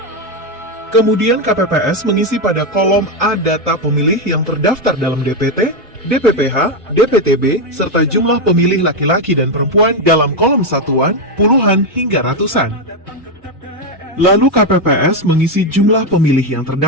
Kemudian KPPS mengisi pada kolom A data pemilih yang terdaftar dalam DPT, DPPH, DPTB, serta jumlah pemilih laki-laki dan perempuan dalam kolom satuan, puluhan hingga ratusan. Lalu KPPS mengisi jumlah pemilih yang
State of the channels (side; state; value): both; normal; correlation 0.06